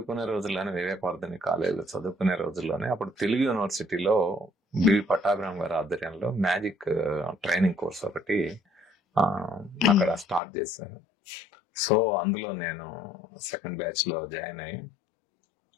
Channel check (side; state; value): right; drops out; at 10.4 s